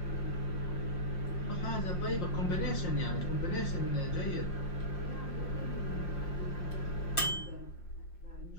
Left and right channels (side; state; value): right; late; 5.6 ms